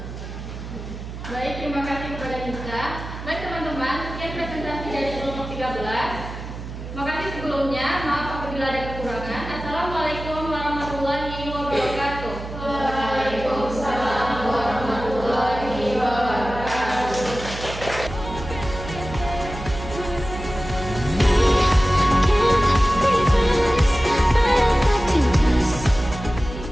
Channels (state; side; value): noise; right; hum, 10 dB below the sound